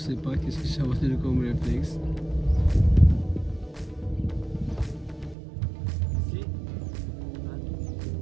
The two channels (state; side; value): drops out; left; at 5.4 s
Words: pas qu'est-ce que ça va être comme réflexe. Ici.